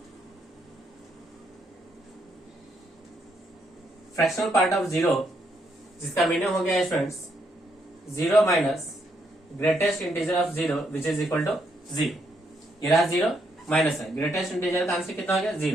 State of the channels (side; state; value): both; normal; correlation 0.75